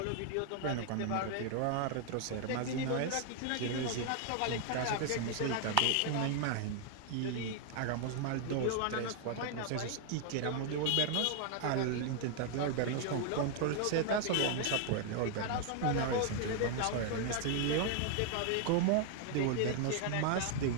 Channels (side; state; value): both; different; correlation 0.00